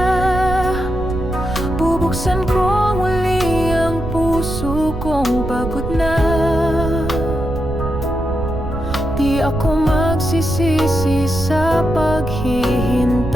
bubuksan ko muli ang puso kong pagod na. Di ako magsisisi sa paghihintay,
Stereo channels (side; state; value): right; noise; rumble, 7 dB below the sound